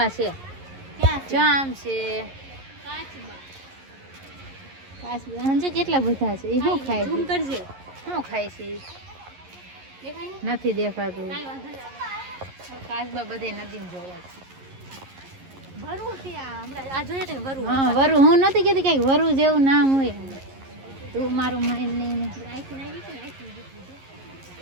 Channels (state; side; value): late; left; 11 ms